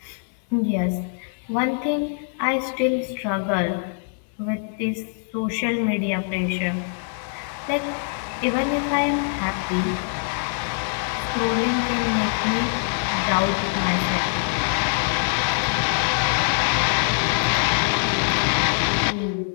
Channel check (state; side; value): silent; right; 59 dB below the other